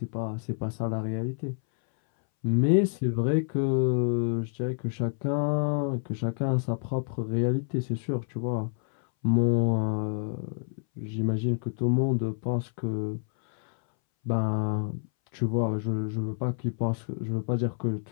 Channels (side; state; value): right; silent; 59 dB below the other